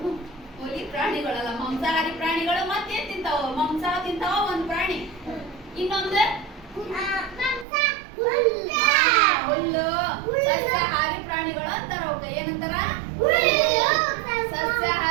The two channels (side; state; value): left; drops out; at 7.7 s